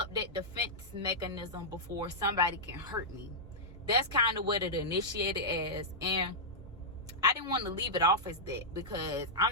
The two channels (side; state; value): both; normal; correlation -0.09